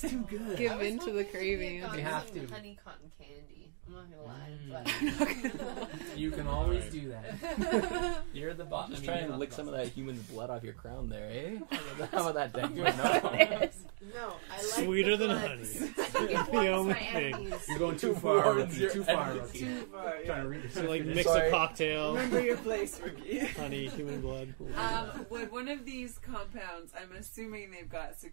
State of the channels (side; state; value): left; silent; digital silence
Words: too good. Give I was into the hoping that he craving. had gotten You have some to. honey cotton candy. I'm not gonna lie, but You can always do that. You're the boss. Just try and lick some of that human's blood off your crown there, eh? How about that, Dan? No. no, I like Sweeter the than blood. honey. I think it warms the my only thing. enemies. You're going too far. Warns Rookie. your Too far, enemies. Rookie. Too far, Trying to yeah. read So like mix Sorry. a cocktail. Remember your place, rookie. Honey, human blood. Would one of these compounds, I'm assuming they've got